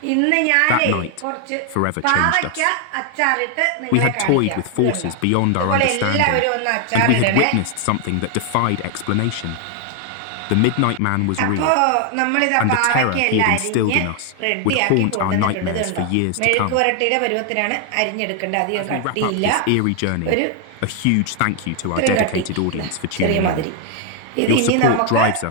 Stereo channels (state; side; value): different; both; correlation 0.00